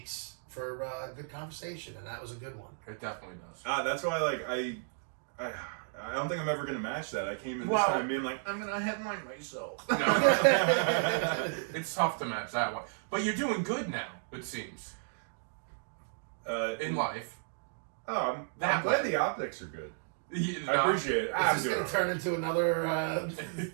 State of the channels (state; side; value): silent; left; digital silence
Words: for a good conversation, and that was a good one. It definitely does. That's why I don't think I'm ever gonna match that. I came in this Well- time being like, I'm gonna headline myself. No. It's tough to match that one. But you're doing good now, it seems, in life. I'm That glad way. the optics are good. You I appreciate it. Is this going to turn into another?